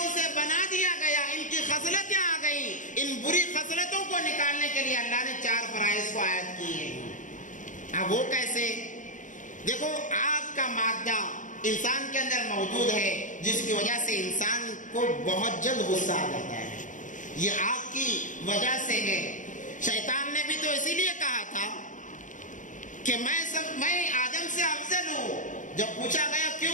سے بنا دیا گیا، ان کی خصلتیں آ گئیں، ان بری خصلتوں کو نکالنے کے لیے اللہ نے 4 فرائض کو عائد کی ہیں۔ اب وہ کیسے؟ دیکھو، آگ کا مادہ انسان کے اندر موجود ہے، جس کی وجہ سے انسان کو بہت جلد غصہ آ جاتا ہے، یہ آگ کی وجہ سے ہے۔ شیطان نے بھی تو اسی لیے کہا تھا کہ میں آدم سے افضل ہوں۔ جب پوچھا گیا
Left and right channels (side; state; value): right; late; 0.37 ms